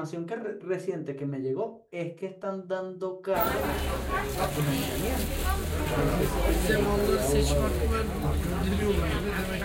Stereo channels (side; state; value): both; identical; correlation 1.00